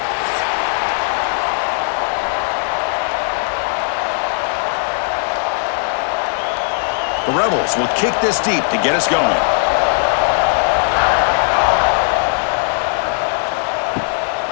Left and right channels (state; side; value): silent; right; digital silence